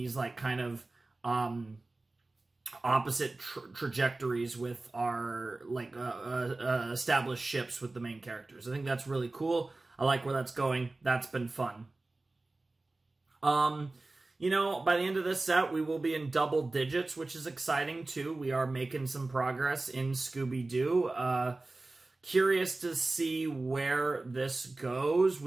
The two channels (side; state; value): left; quieter; 3.1 dB